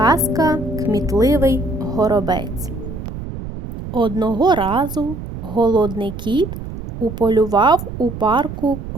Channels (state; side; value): noise; right; rumble, 9 dB below the sound